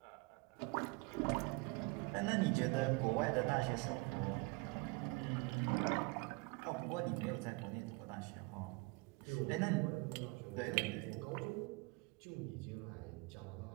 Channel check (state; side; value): quieter; left; 26.5 dB